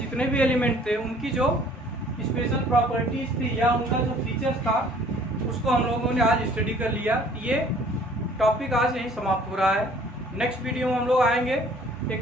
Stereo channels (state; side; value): normal; both; correlation 0.55